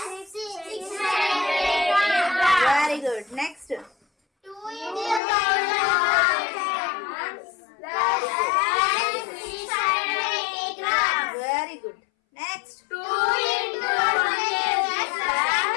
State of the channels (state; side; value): drops out; right; at 5.2 s